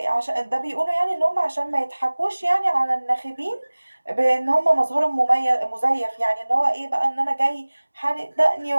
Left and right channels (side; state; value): both; inverted; correlation -1.00